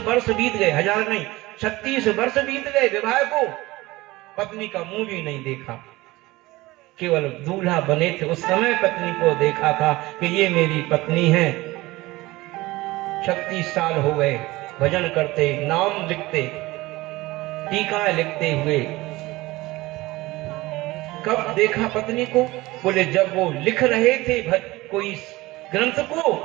बीत गए, 1000 नहीं 36 वर्ष बीत गए विवाह को, पत्नी का मुंह भी नहीं देखा। केवल दूल्हा बने थे उस समय पत्नी को देखा था कि ये मेरी पत्नी है। 36 साल हो गए भजन करते, नाम लिखते, टीका लिखते हुए। कब देखा पत्नी को? बोले जब वो लिख रहे थे कोई ग्रंथ को,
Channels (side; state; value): left; quieter; 19.8 dB